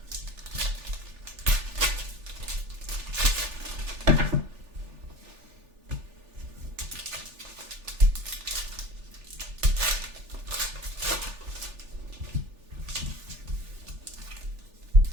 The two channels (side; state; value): left; late; 3.4 ms